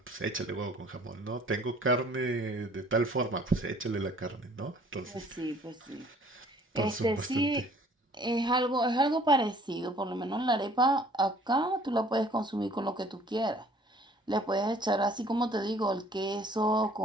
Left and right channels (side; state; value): both; normal; correlation 0.55